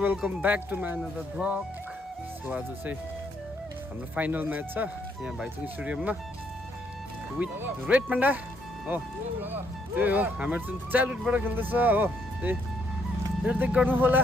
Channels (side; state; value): both; normal; correlation 0.72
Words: back to my another vlog. So आज चाहिँ हाम्रो final match छ यहाँ भाइचुङ स्टेडियममा with red panda हो। त्यही हो हाम्रो चाहिँ चाइल्डहुडबाट खेल्दैछ हो। त्यही हेर्दै गर्नु होला